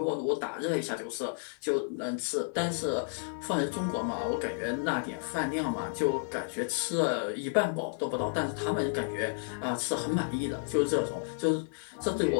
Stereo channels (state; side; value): silent; right; 57 dB below the other